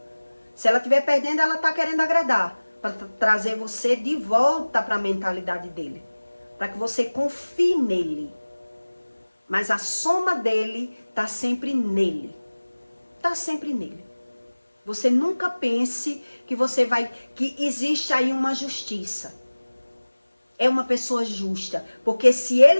Se ela estiver perdendo, ela está querendo agradar. Para trazer você de volta para a mentalidade dele. Para que você confie nele. Mas a soma dele está sempre nele. Está sempre nele. Você nunca pense que que existe aí uma justiça. É uma pessoa justa. Porque se ele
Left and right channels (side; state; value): both; inverted; correlation -1.00